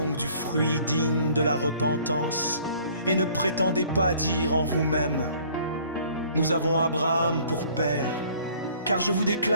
du fruit digne de la repentance, et ne prétendez pas dire en vous-même: Nous avons Abraham pour père. Car je vous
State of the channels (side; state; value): both; inverted; correlation -0.56